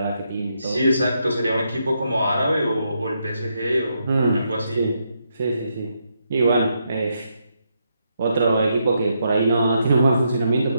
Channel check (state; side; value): inverted; both; correlation -0.80